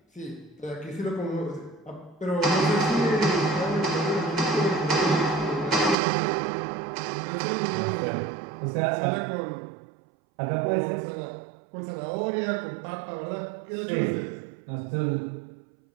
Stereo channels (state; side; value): drops out; left; at 6.0 s